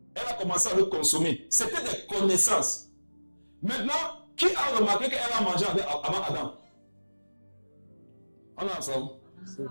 elle a commencé à le consommer. C'était des connaissances. Maintenant, qui a remarqué qu'elle a mangé avant Adam? On est ensemble.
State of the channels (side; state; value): both; inverted; correlation -1.00